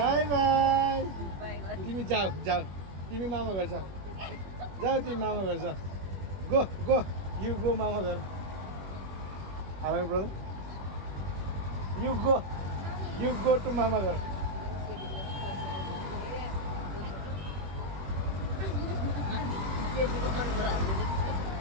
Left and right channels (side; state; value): left; late; 21 ms